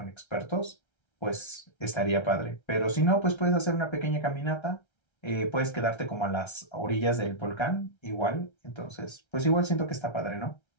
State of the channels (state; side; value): late; right; 1.3 ms